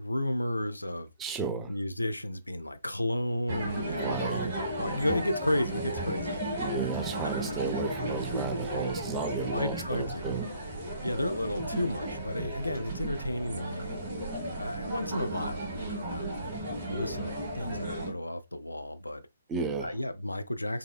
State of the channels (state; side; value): inverted; both; correlation -0.66